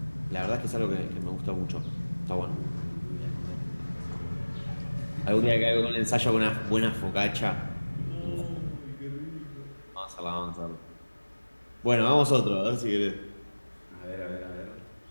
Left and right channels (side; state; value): both; inverted; correlation -1.00